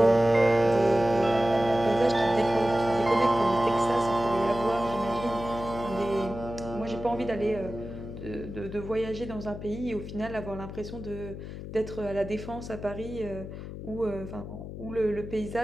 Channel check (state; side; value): noise; left; hum, 10 dB below the sound